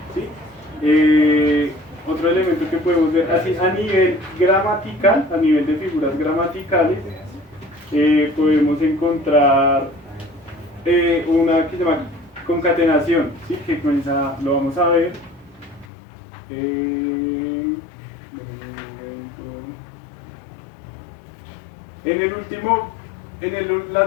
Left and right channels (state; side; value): drops out; right; at 15.9 s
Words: ¿sí? Otro elemento que podemos ver así a nivel gramatical, a nivel de figuras gramaticales, podemos encontrar una que se llama concatenación, ¿sí? Que comienza, lo vamos a ver.